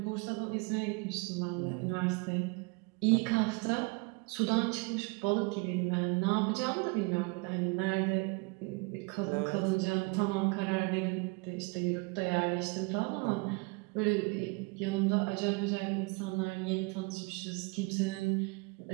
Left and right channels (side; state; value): left; quieter; 28.9 dB